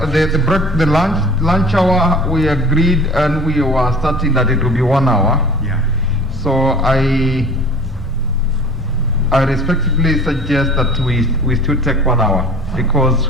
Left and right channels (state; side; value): normal; both; correlation 0.45